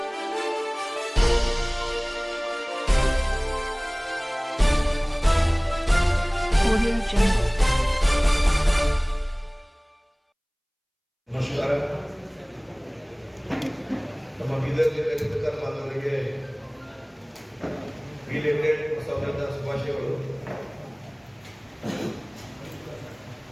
Audio Jungle. ನಮಸ್ಕಾರ. ನಮ್ಮ ಬೀದರ್ ಜಿಲ್ಲೆ ಮಾನವರಿಗೆ ರಿಲೇಟೆಡ್ ಹೊಸ ವರ್ಷದ ಶುಭಾಶಯಗಳು.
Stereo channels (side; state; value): both; identical; correlation 1.00